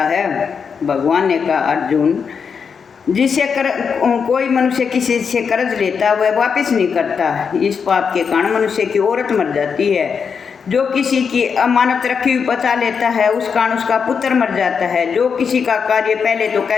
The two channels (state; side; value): quieter; right; 6.2 dB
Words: है। भगवान ने कहा अर्जुन जिससे कोई मनुष्य किसी से कर्ज लेता वह वापस नहीं करता, इस पाप के कारण मनुष्य की औरत मर जाती है, जो किसी की अमानत रखी हुई बचा लेता है उस कारण उसका पुत्र मर जाता है, जो किसी का कार्य पहले तो